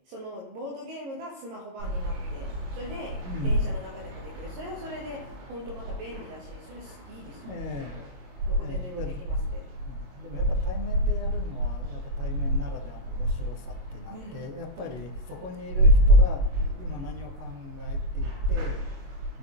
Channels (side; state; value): left; late; 22 ms